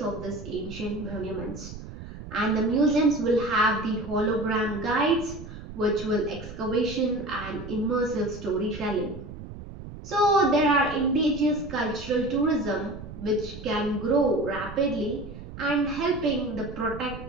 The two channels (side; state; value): right; noise; rumble, 12 dB below the sound